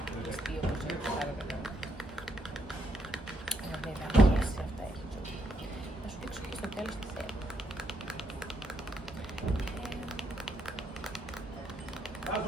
όπως είναι το άλλο καλά. Βέβαια, και αυτά έχει ζωή. Θα σου δείξω και στο τέλος τι θέλω.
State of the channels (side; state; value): both; normal; correlation 0.76